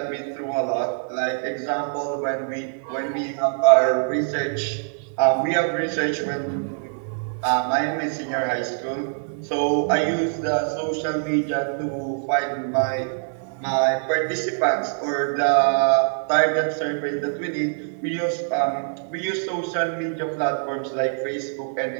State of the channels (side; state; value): left; silent; digital silence